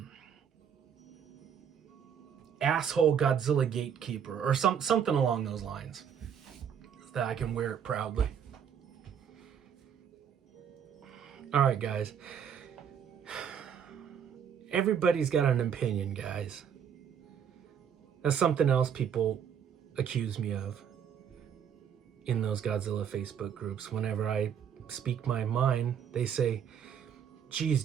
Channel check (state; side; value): quieter; left; 8.1 dB